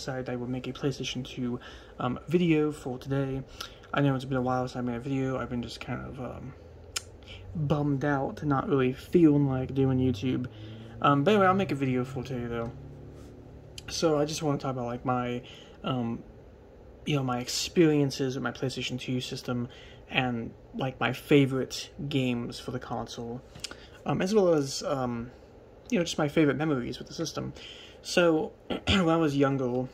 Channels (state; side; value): identical; both; correlation 1.00